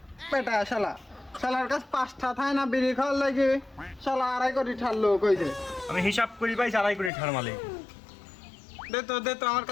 বেটা শালার কাছে 5টা থায় না বিড়ি খাওয়ার লাগে শালা 2.5 কোটি ঠারলো কইছে। আমি হিসাব করি পাইছি 2.5 কোটি টাকার মালিক। দে তো আমার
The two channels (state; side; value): drops out; right; at 7.1 s